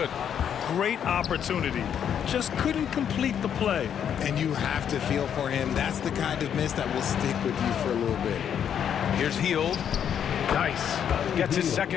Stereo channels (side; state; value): right; quieter; 8.7 dB